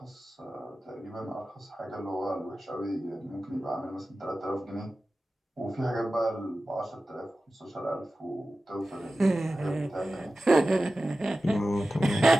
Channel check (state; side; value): normal; both; correlation 0.95